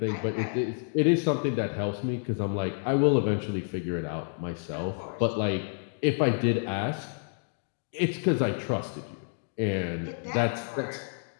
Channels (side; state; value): right; silent; 58 dB below the other